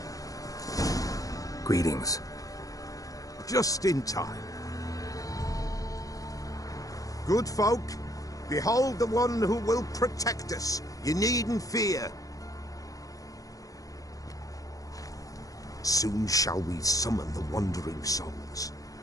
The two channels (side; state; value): right; late; 0.17 ms